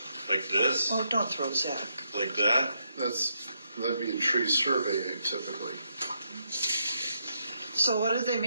Like this? Oh, don't throw Zach. Like that? That'd be a tree survey typically. So what do they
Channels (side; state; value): both; inverted; correlation -0.79